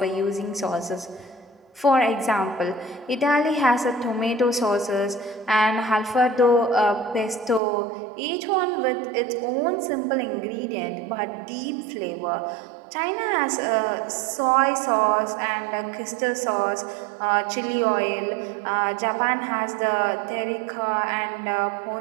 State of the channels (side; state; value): left; drops out; at 7.6 s